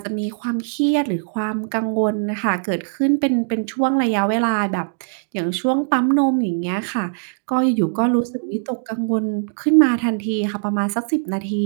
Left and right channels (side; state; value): left; silent; digital silence